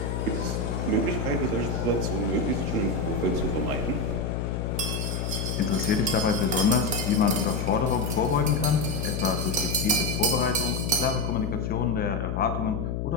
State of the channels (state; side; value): noise; left; hum, 2 dB below the sound